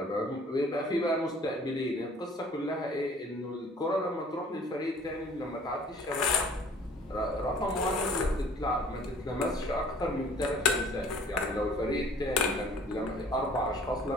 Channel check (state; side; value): normal; both; correlation 0.53